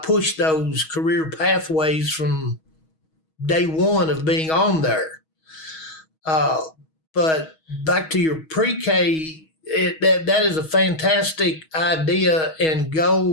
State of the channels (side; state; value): right; late; 6.3 ms